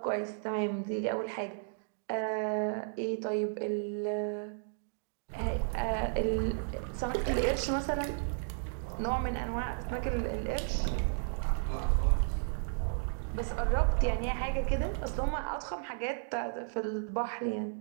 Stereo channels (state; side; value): silent; left; digital silence